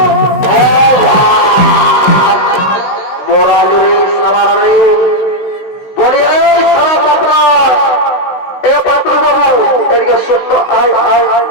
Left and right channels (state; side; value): late; right; 16 ms